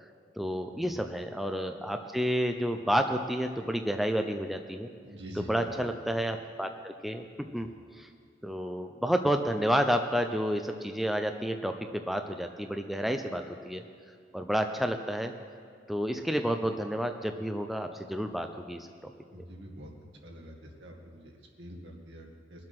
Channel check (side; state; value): both; normal; correlation 0.86